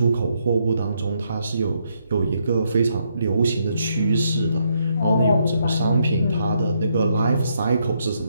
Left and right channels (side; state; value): both; inverted; correlation -0.77